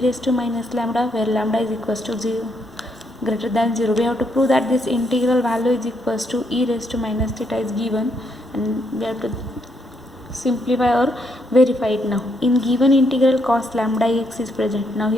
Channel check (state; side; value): normal; both; correlation 0.75